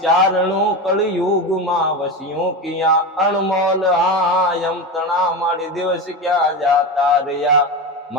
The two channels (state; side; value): normal; both; correlation 0.21